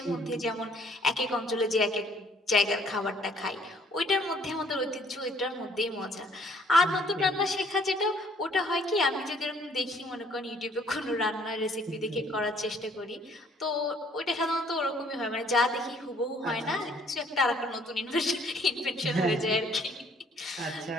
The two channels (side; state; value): both; normal; correlation 0.61